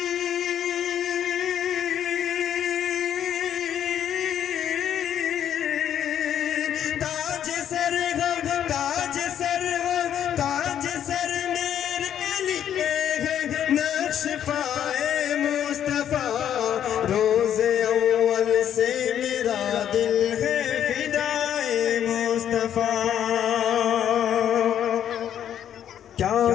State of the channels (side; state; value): right; quieter; 9.9 dB